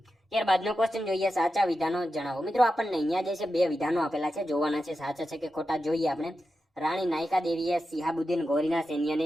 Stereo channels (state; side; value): normal; both; correlation 0.90